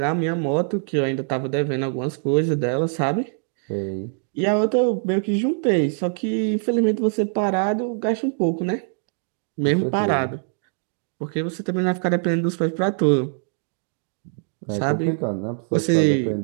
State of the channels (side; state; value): left; silent; 56 dB below the other